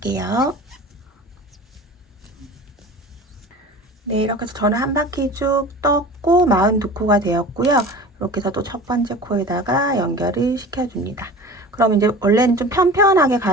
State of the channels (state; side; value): normal; both; correlation 0.37